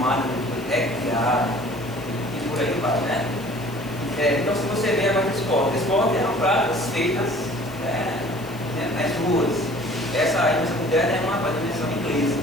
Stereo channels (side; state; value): left; noise; hiss, 21 dB below the sound